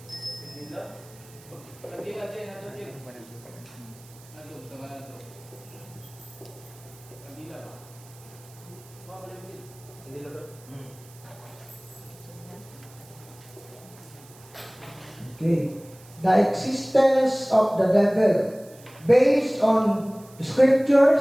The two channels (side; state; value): right; noise; hiss, 23 dB below the sound